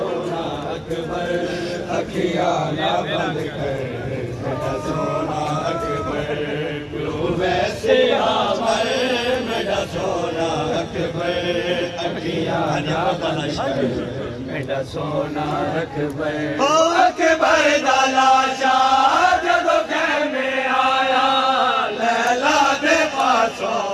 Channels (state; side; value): identical; both; correlation 1.00